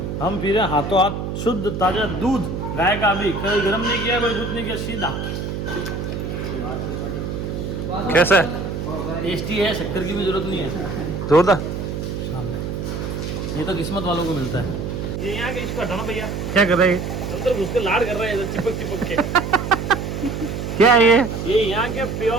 हम पी रहे हैं हाथों हाथ शुद्ध ताजा दूध गाय का, अभी कभी गर्म नहीं किया, कोई कुछ नहीं किया, सीधा। कैसा है? टेस्टी है, शक्कर की भी जरूरत नहीं है। जोरदार। ये तो किस्मत वालों को मिलता है। ये यहाँ के इसको हटाना भैया। क्या कर रहे हैं? अंदर घुस के लाड कर रहे हैं चिपक चिपक के। क्या है ये यहाँ के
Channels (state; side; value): noise; right; hum, 4 dB below the sound